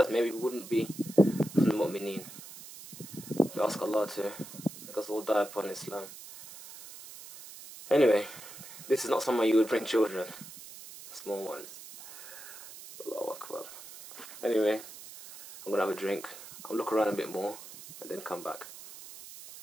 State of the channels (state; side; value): noise; right; hiss, 15 dB below the sound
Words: maybe we wouldn't be from the Mu'mineen. We ask Allah to make us all die upon Islam. Anyway, this is not somewhere you would bring children, small ones. Allahu Akbar. Anyway, I'm gonna have a drink. I'll look around a bit more and then come back.